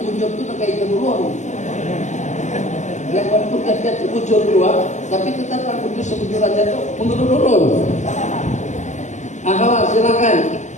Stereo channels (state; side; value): late; right; 0.34 ms